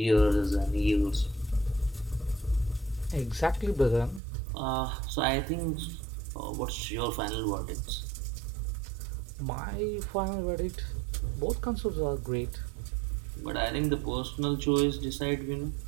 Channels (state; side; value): drops out; left; at 4.2 s